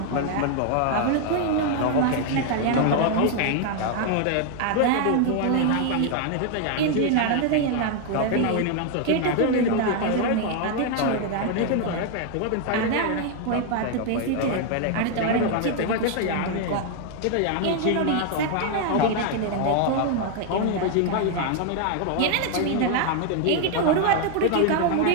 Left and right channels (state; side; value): different; both; correlation 0.00